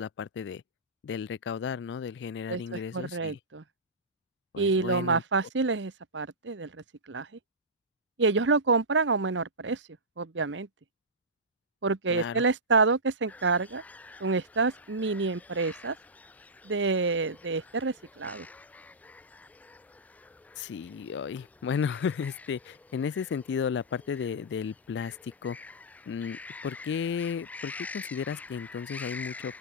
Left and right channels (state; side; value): normal; both; correlation -0.15